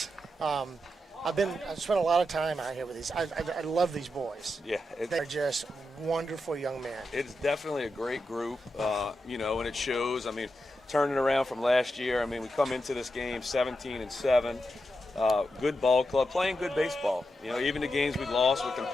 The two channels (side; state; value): both; normal; correlation 0.87